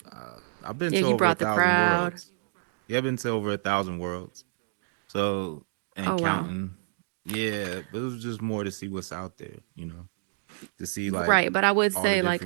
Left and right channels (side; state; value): left; silent; digital silence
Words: I've been Yeah, to you over a brought the thousand crowd. worlds. Yeah, I've been to over 1,000 worlds. So and Oh, wow. counting. Yeah, but it was just more to see what's out there. You know, to see like Right. But I would all the say, like,